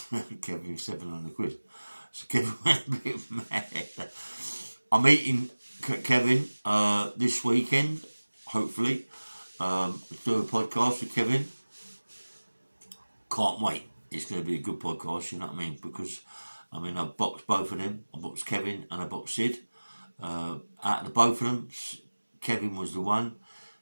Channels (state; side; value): inverted; both; correlation -1.00